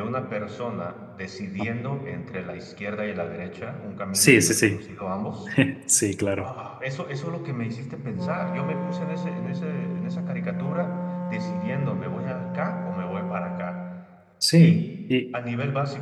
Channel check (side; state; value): both; identical; correlation 1.00